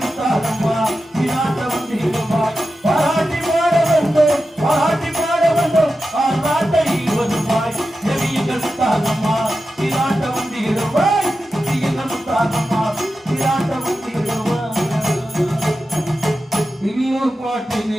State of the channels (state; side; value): normal; both; correlation 0.92